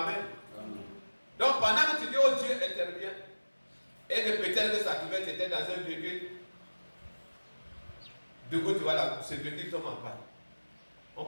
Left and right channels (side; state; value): both; inverted; correlation -1.00